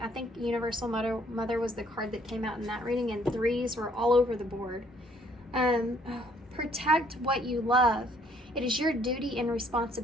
think Universal Mother was the card that came out in that reading, and 3s were all over the board. Protect what you love. It is your duty and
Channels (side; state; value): both; normal; correlation 0.63